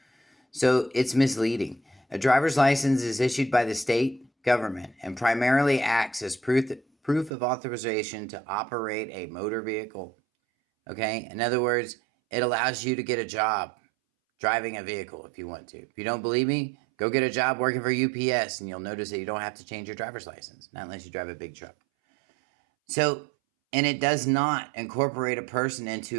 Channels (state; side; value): drops out; left; at 7.3 s